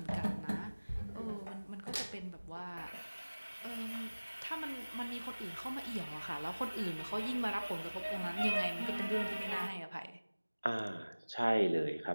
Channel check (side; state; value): both; inverted; correlation -1.00